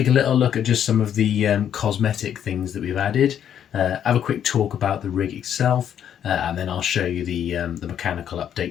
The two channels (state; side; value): quieter; right; 9.4 dB